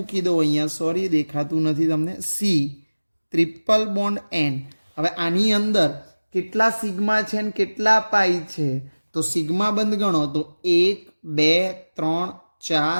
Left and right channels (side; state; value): both; inverted; correlation -1.00